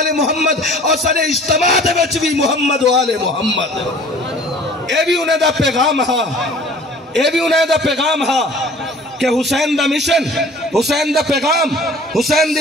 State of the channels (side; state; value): both; normal; correlation 0.48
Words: محمد، اور سارے اجتماع دے وچ بھی محمد و آل محمد۔ اے بھی انہیں دا پیغام ہا، اے بھی انہیں دا پیغام ہا کہ حسین دا مشن، حسین دا پیغام، حسین